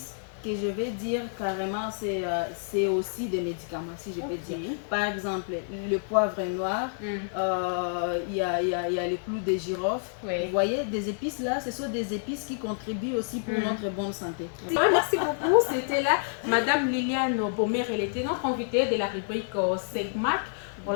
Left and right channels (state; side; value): silent; right; 57 dB below the other